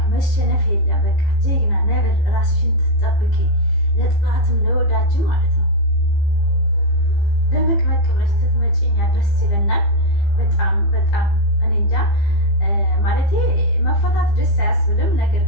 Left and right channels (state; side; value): late; right; 15 ms